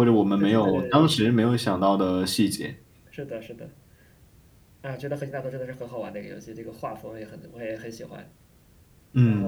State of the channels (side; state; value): both; identical; correlation 1.00